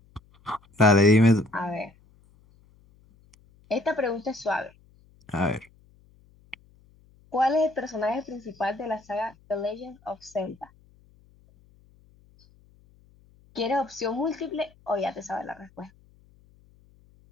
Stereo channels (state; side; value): noise; left; hum, 30 dB below the sound